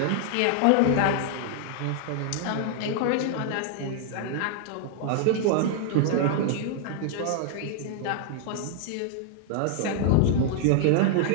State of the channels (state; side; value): different; both; correlation -0.01